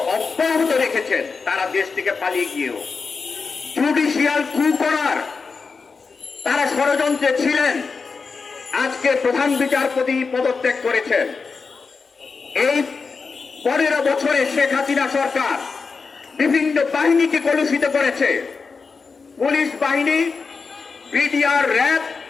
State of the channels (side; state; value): right; quieter; 4.8 dB